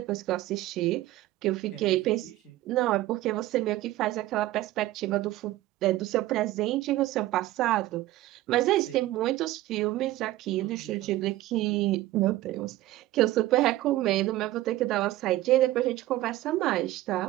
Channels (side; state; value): left; quieter; 16.0 dB